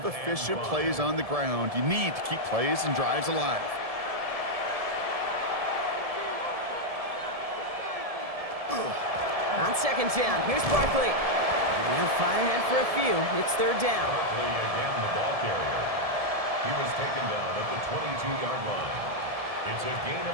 efficient plays on the ground. You need to keep plays and drives alive. On 2nd down, here's Barkley. And they'll fight ahead for a few. It's 3rd down. Barkley again the ball carrier. He was taken down at the 22-yard line. It's a gain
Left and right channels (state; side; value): late; left; 1.7 ms